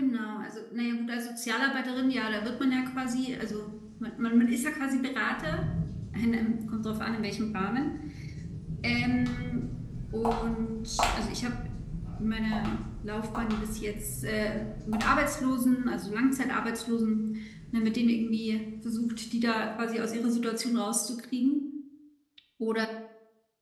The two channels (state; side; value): identical; both; correlation 1.00